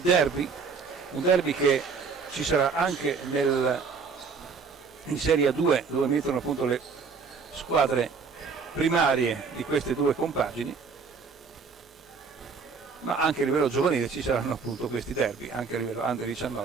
derby, un derby che ci sarà anche in Serie A2, dove mettono appunto le squadre primarie di queste due compagini, ma anche a livello giovanile ci saranno appunto questi derby, anche a livello Under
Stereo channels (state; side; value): quieter; left; 5.2 dB